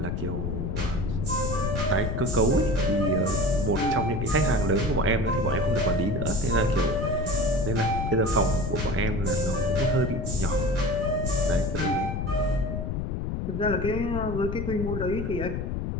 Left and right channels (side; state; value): left; noise; rumble, 2 dB below the sound